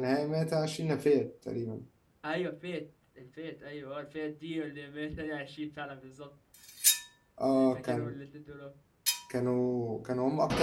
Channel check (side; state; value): both; identical; correlation 1.00